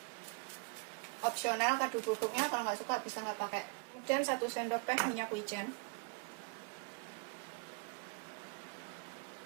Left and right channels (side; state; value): left; quieter; 33.1 dB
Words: Opsional kaldu bubuknya, kalau nggak suka bisa nggak pakai. Kemudian 1 sendok teh minyak wijen.